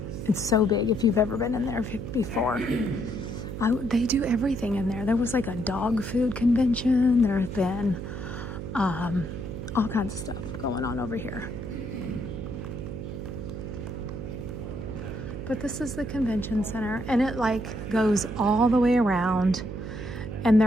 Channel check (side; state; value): right; noise; hum, 7 dB below the sound